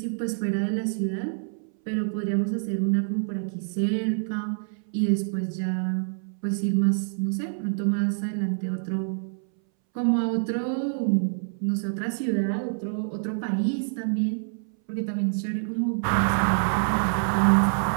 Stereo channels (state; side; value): silent; left; 61 dB below the other